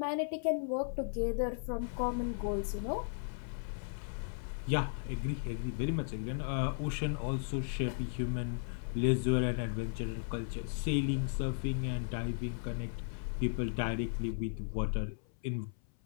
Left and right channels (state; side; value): silent; right; 54 dB below the other